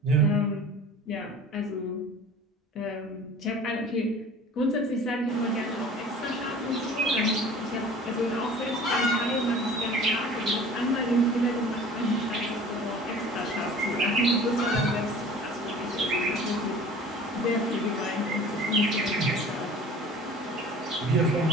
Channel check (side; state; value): both; normal; correlation 0.44